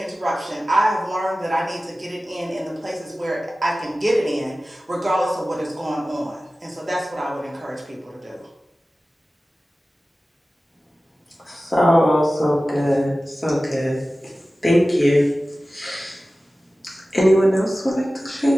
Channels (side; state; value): both; normal; correlation 0.96